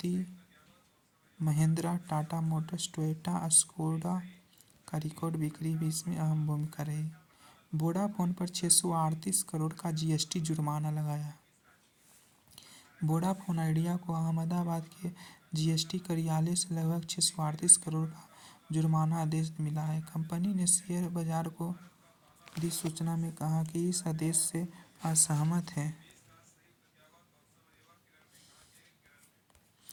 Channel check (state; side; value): identical; both; correlation 1.00